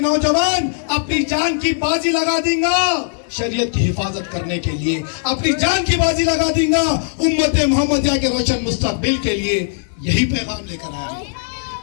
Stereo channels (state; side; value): silent; right; 60 dB below the other